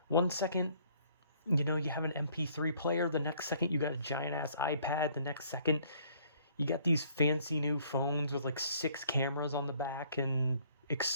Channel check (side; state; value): both; inverted; correlation -0.61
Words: 1 second you have an MP3 player. The next second, you got a giant ass iPad. The next second, you got these fancy new phones with like 6 cameras on the back and